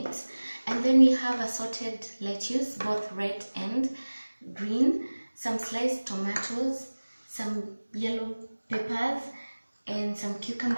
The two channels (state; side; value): inverted; both; correlation -1.00